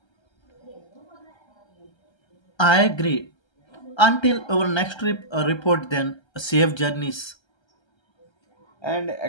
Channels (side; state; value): right; late; 1.3 ms